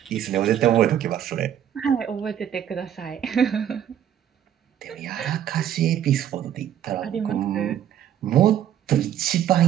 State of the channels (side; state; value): left; quieter; 10.2 dB